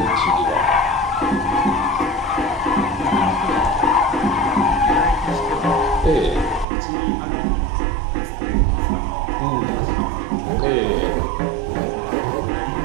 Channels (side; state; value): left; drops out; at 6.7 s